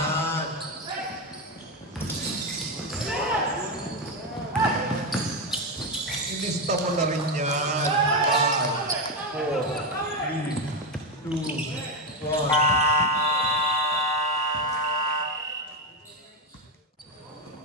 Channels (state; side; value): normal; both; correlation 0.09